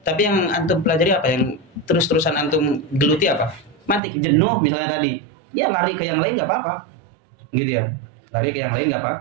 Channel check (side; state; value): left; drops out; at 4.0 s